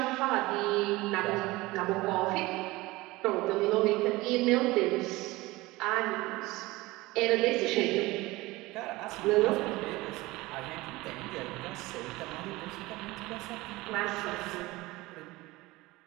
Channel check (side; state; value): left; quieter; 20.4 dB